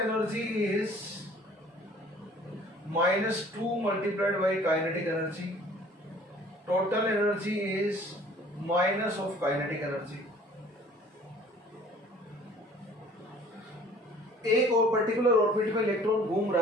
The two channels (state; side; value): normal; both; correlation 0.52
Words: is -2 multiplied by kinetic energy, total energy is minus of kinetic energy. एक और पर्टिकुलर ऑर्बिट में इलेक्ट्रॉन घूम